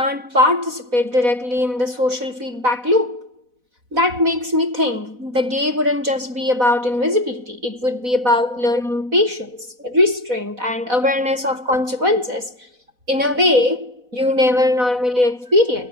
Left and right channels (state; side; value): late; left; 4.0 ms